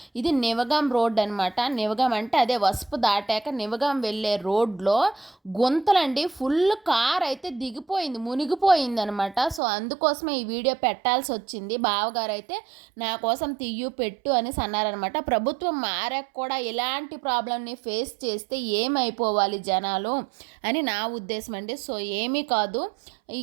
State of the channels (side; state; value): left; drops out; at 9.6 s